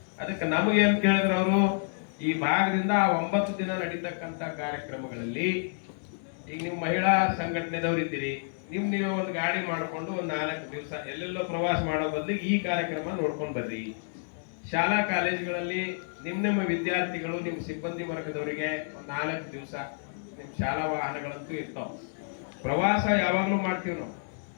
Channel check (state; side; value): silent; right; 58 dB below the other